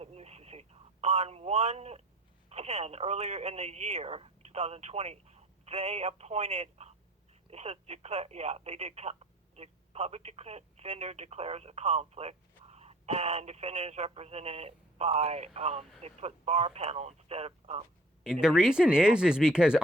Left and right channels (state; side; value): normal; both; correlation 0.52